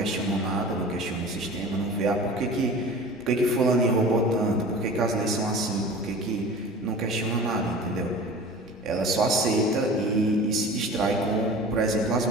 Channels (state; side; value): normal; both; correlation 0.39